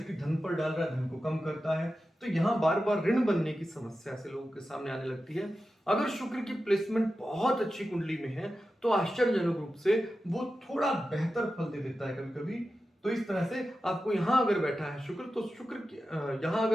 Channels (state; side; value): normal; both; correlation 0.92